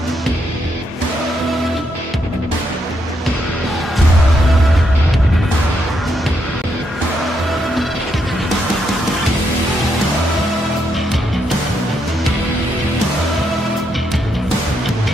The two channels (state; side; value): normal; both; correlation 0.78